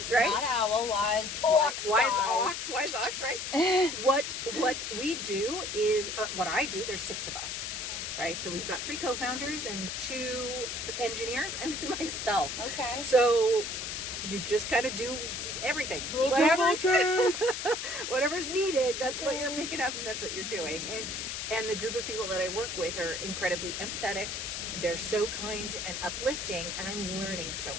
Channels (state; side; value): noise; left; hiss, 4 dB below the sound